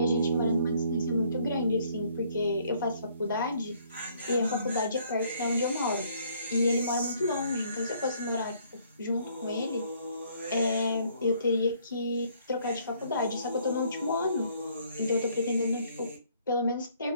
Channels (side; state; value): both; inverted; correlation -0.64